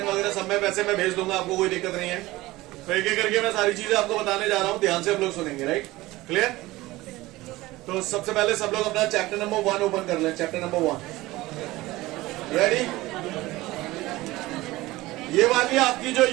वगैरह सब में वैसे मैं भेज दूंगा, आपको कोई दिक्कत नहीं है। तो एक एक करके मैं सारी चीजें आपको बताने जा रहा हूँ, ध्यान से हम लोग सुनेंगे। Right, clear? तो सबसे पहले सब लोग अपना चैप्टर नंबर 1 ओपन कर लें। Chapter number 1 ready? ये वाली आपकी जो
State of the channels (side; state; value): left; quieter; 18.9 dB